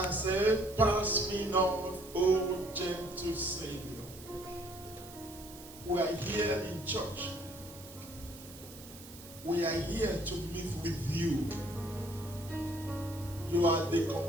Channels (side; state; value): right; noise; hiss, 17 dB below the sound